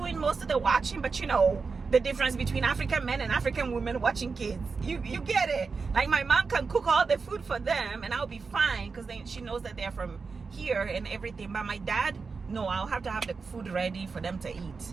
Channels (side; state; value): left; quieter; 4.8 dB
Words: most of the watching, but you know the difference between African men and African women watching kids, you get it. Like my mom can cook all the food for them and I'll be fine, because she knows that they're from here and everything. But my dad, no, I'll have to have the food ready for them to